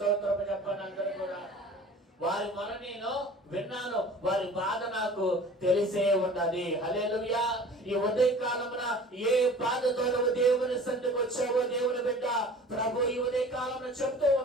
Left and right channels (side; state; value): both; normal; correlation 0.44